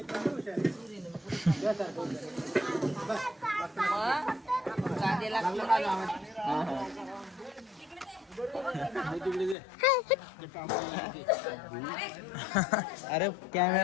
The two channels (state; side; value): drops out; right; at 9.6 s